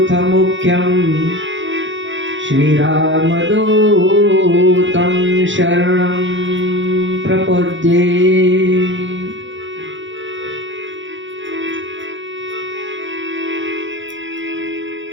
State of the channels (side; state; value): left; late; 0.55 ms